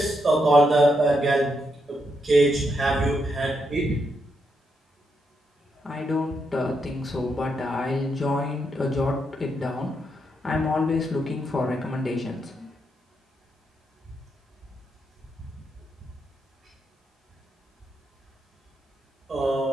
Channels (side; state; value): both; normal; correlation 0.80